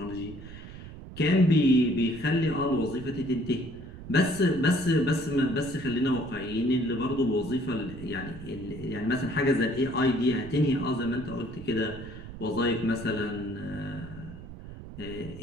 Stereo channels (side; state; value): right; noise; rumble, 13 dB below the sound